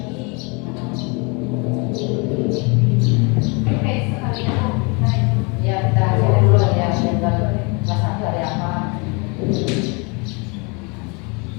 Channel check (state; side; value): quieter; right; 31.0 dB